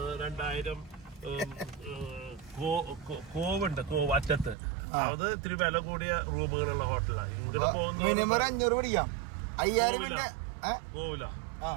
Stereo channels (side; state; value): left; drops out; at 4.5 s